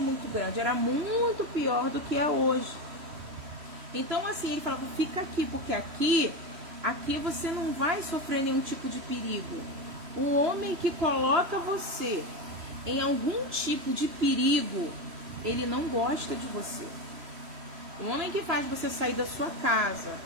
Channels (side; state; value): left; late; 3.1 ms